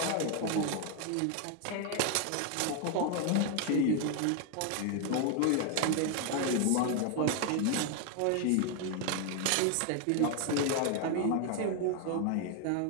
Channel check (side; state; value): both; different; correlation 0.01